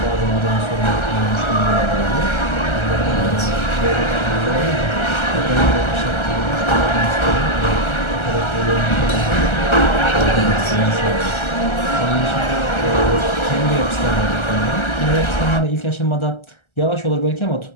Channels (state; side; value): late; right; 1.3 ms